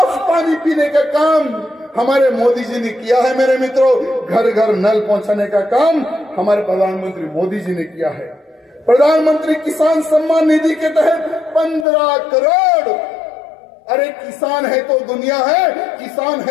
पानी पीने का काम हमारे मोदी जी ने किया है मेरे मित्रों। घर घर नल पहुंचाने का काम हमारे प्रधानमंत्री मोदी जी ने किया है। प्रधानमंत्री किसान सम्मान निधि के तहत 15 करोड़। अरे किसान है तो दुनिया है, किसान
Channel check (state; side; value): drops out; right; at 11.9 s